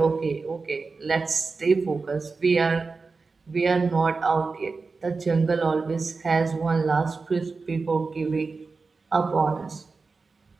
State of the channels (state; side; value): quieter; left; 4.2 dB